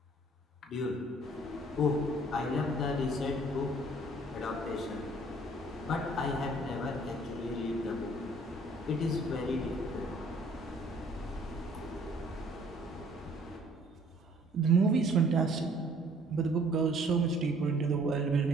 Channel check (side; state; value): both; normal; correlation 0.57